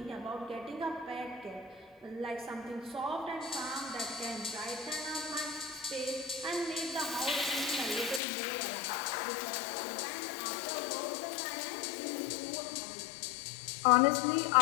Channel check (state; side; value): drops out; right; at 8.2 s